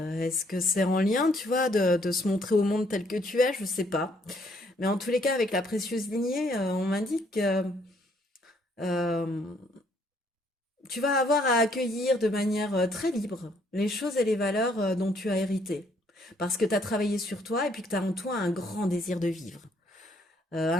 est-ce que c'est en lien, tu vois, de se montrer au monde tel que tu es, je sais pas. Mais en tous les cas, avec la précieuse lignée, on m'indique que euh, tu vas avoir à accueillir de manière très libre les choses et les valeurs dont tu as hérité. Parce que tu as travaillé sur toi et puis que tu as en toi un grand désir de vivre.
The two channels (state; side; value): normal; both; correlation 0.67